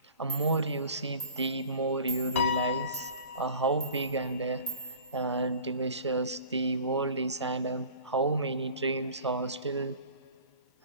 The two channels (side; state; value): both; inverted; correlation -0.44